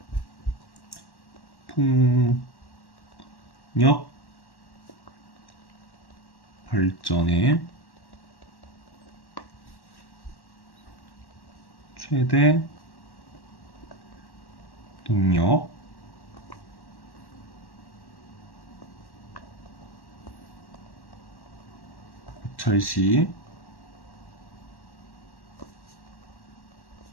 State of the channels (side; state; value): right; late; 1.1 ms